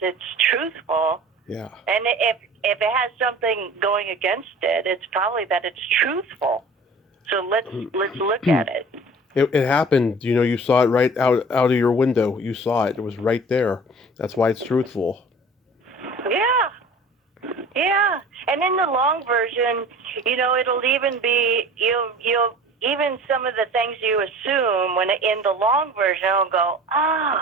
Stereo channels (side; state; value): both; normal; correlation 0.43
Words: truthful. Yeah. And if it has something going against it, it's probably that it's truthful. So let's look at it. It happened, you saw it right out of your window. You saw it. It was right there. That's why it's truthful. Yeah. And in the long version, it'll even be, you'll even some of the things you assume when in the long version, it'll go,